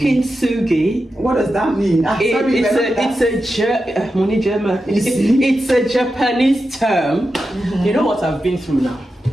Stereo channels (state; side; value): normal; both; correlation 0.90